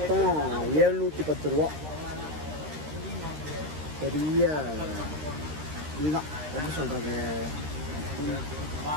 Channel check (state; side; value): late; left; 13 ms